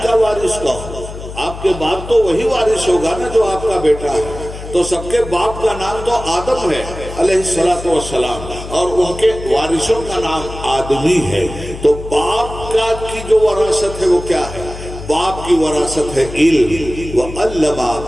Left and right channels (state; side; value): noise; left; hum, 11 dB below the sound